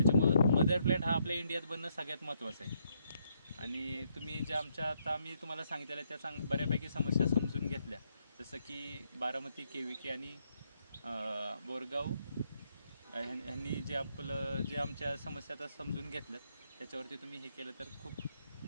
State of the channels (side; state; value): both; inverted; correlation -0.75